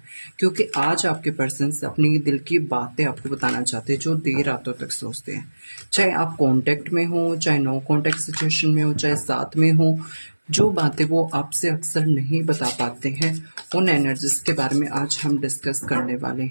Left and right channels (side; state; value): both; inverted; correlation -1.00